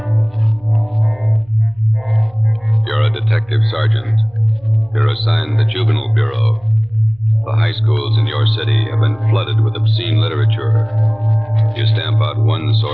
You're a detective sergeant. You're assigned the Juvenile Bureau. The high schools in your city have been flooded with obscene literature. You stamp out one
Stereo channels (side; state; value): right; noise; hum, 28 dB below the sound